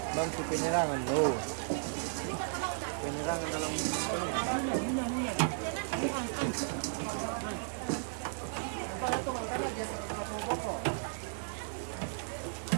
Masih penyerangan tuh. Penyerangan dalam Para to mangkana geser ke satu pokok.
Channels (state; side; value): silent; left; digital silence